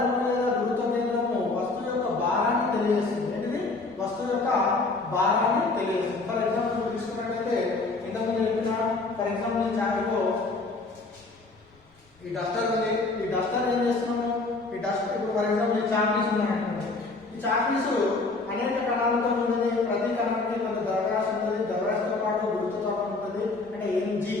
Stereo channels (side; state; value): right; quieter; 3.5 dB